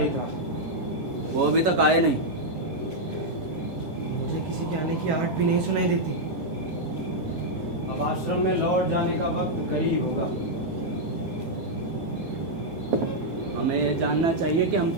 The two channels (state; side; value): late; left; 10 ms